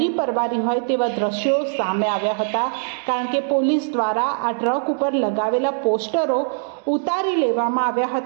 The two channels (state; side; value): silent; left; digital silence